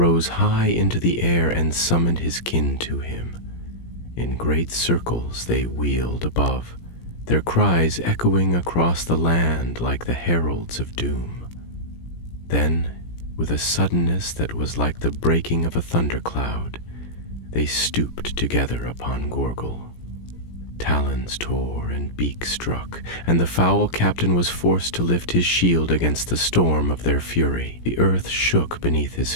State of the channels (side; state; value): right; late; 17 ms